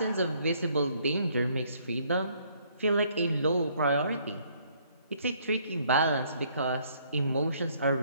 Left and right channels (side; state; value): both; inverted; correlation -0.65